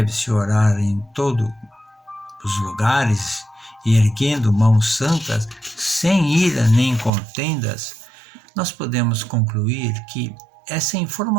orar em todos os lugares e erguendo mãos santas, sem ira nem contendas, nós podemos concluir que essa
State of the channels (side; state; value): left; drops out; at 7.1 s